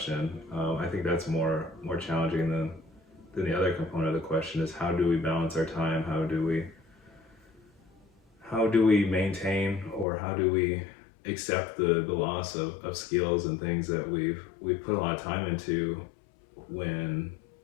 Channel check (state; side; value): drops out; right; at 10.1 s